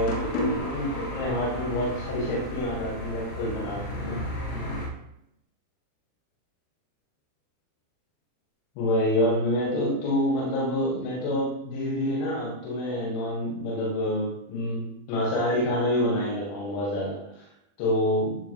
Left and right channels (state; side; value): late; right; 40 ms